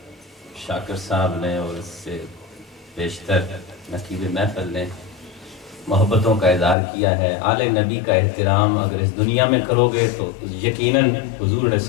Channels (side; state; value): right; drops out; at 6.8 s